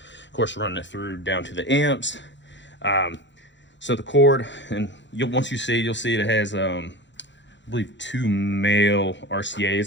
course running it through down to the amps. So the cord, and once you see, you'll see it has I believe 2 male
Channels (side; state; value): right; late; 0.53 ms